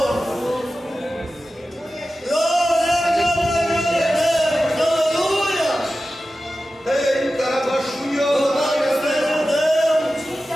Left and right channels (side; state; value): both; normal; correlation 0.94